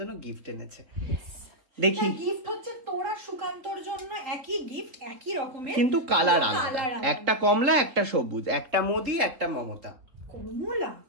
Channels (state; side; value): late; left; 3.7 ms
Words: গিফট এনেছে, দেখি গিফট হচ্ছে তোরা সুকান্তর জন্য একই গিফট, একই রকমের কিন্তু কালার আলাদা, একটা কমলা একটা সবুজ, একটা মোদি একটা মমতা। কমলা?